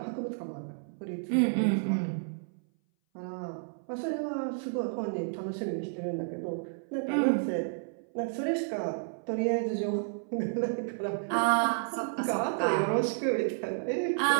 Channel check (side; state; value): left; silent; 57 dB below the other